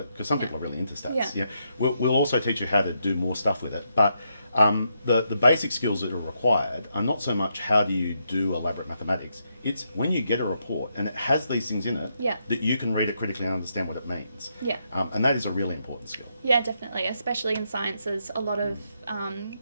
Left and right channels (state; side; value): inverted; both; correlation -0.80